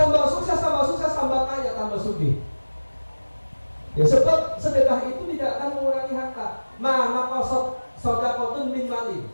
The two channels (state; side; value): inverted; both; correlation -1.00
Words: sukses, tambah kaya, tambah sugih. Ya sebab sedekah itu tidak akan mengurangi harta. Maka sedekahun min mali.